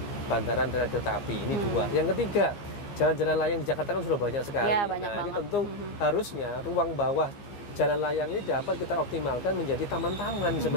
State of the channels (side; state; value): right; late; 15 ms